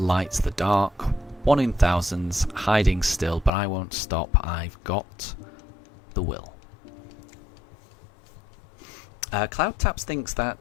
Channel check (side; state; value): right; drops out; at 3.5 s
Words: the dark, 1 in thousands, hiding still, but I won't stop, I've got the will. Cloud Taps thinks